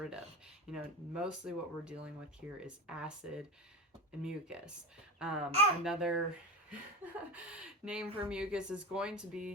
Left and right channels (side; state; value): both; normal; correlation 0.23